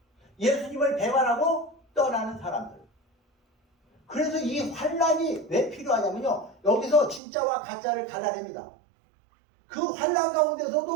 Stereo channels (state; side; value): drops out; left; at 7.2 s